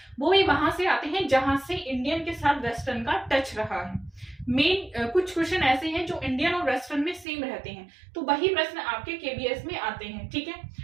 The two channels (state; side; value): drops out; left; at 7.2 s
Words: वो भी वहां से आते हैं जहां से इंडियन के साथ वेस्टर्न का टच रहा है। मेन कुछ क्वेश्चन ऐसे हैं जो इंडियन और वेस्टर्न में सेम रहते हैं, तो वही प्रश्न आपके केवीएस में आते हैं, ठीक है।